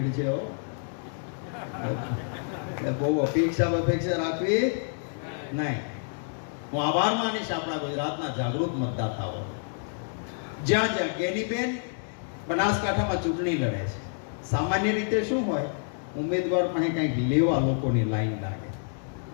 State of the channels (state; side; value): silent; right; digital silence